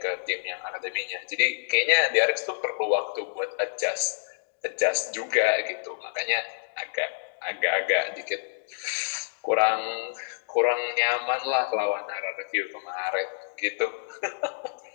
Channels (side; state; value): right; silent; digital silence